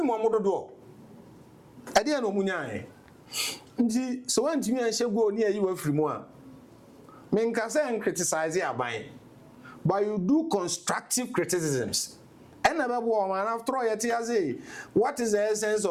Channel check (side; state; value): both; identical; correlation 1.00